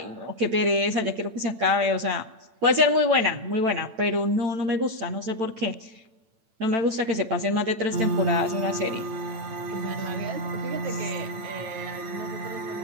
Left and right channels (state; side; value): late; left; 8.9 ms